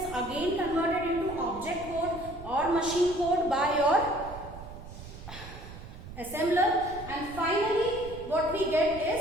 again converted into object code or machine code by your assembler, and finally what we get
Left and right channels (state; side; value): noise; right; rumble, 14 dB below the sound